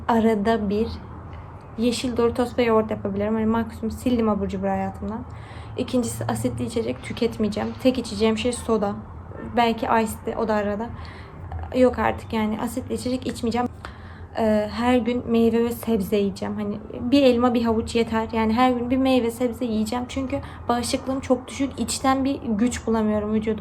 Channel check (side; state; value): both; identical; correlation 1.00